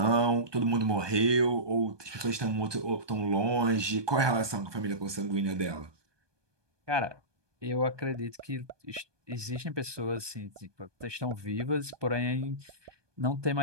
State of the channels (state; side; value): late; left; 1.2 ms